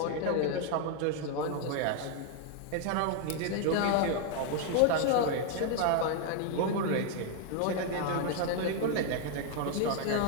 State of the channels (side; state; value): both; different; correlation 0.00